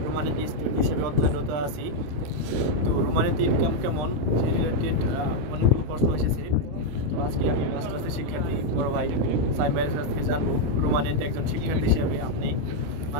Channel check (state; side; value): late; left; 27 ms